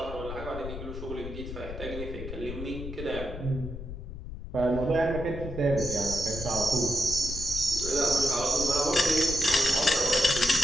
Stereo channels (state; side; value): noise; left; rumble, 9 dB below the sound